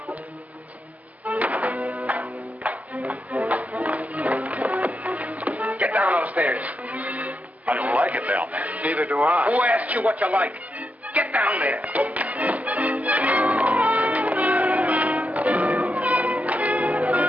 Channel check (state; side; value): late; left; 0.075 ms